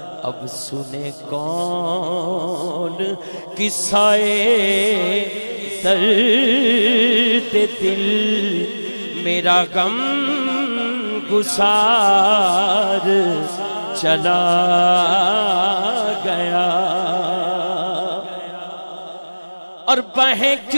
اب سنے کون قصہ درد دل، میرا غم گسار چلا گیا۔ اور بہیں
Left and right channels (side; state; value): both; inverted; correlation -1.00